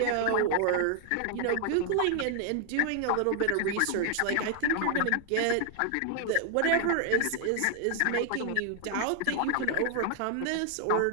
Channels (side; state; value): both; different; correlation 0.00